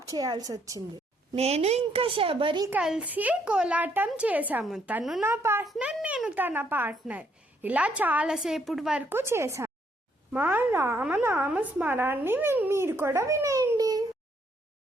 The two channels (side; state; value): both; normal; correlation 0.71